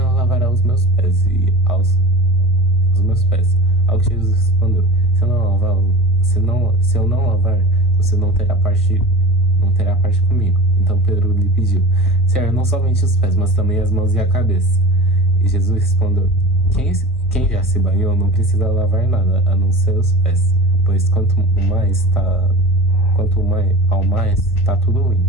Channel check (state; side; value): normal; both; correlation 0.34